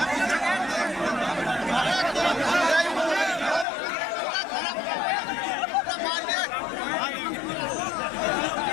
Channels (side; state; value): right; drops out; at 3.7 s